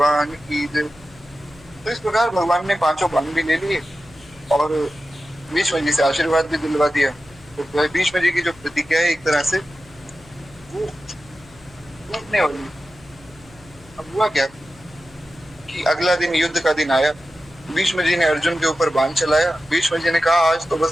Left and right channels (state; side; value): noise; left; hum, 24 dB below the sound